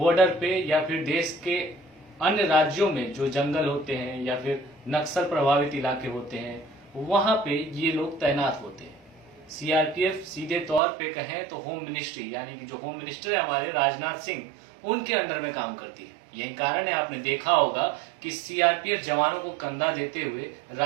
पे या फिर देश के अन्य राज्यों में जो जंगल होते हैं या फिर नक्सल प्रभावित इलाके होते हैं वहां पे ये लोग तैनात होते हैं। सीआरपीएफ सीधे तौर पे कहें तो होम मिनिस्ट्री यानी कि जो होम मिनिस्टर है हमारे राजनाथ सिंह, उनके अंडर में काम करती है। यही कारण है आपने देखा होगा कि सीआरपीएफ जवानों को कंधा देते हुए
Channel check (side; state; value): left; drops out; at 10.8 s